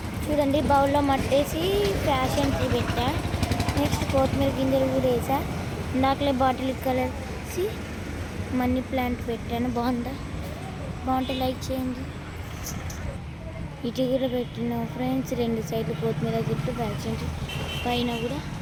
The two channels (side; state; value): both; identical; correlation 1.00